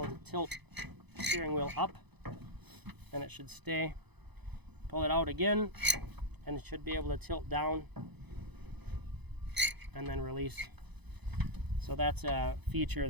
to tilt the steering wheel up, and it should stay. Pull it out again, and it should be able to tilt down and then release. So that's a feature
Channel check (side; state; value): left; late; 0.99 ms